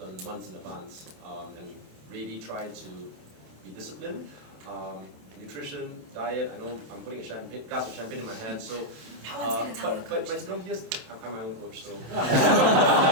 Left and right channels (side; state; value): left; late; 27 ms